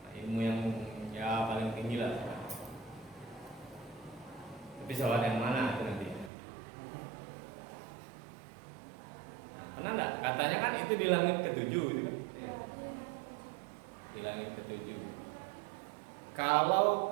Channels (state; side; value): drops out; left; at 6.3 s